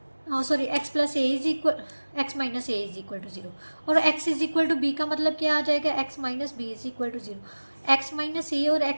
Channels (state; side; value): inverted; both; correlation -1.00